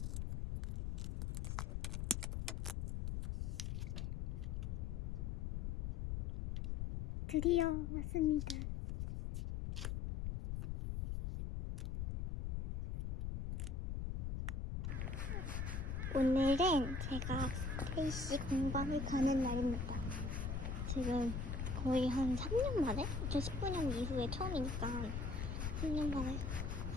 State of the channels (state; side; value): noise; left; rumble, 2 dB below the sound